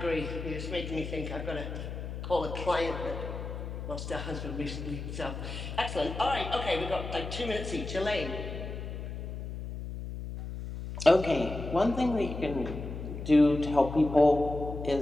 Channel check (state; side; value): noise; left; hum, 7 dB below the sound